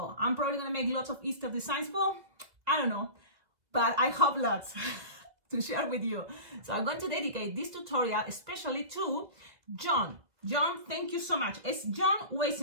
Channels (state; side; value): late; left; 2.0 ms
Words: I'm probably gonna make lots of Easter designs. Well, I don't know, but I hope lots to share with you. So I'm going to dedicate this tutorial especially to John. John, thank you so much. It's John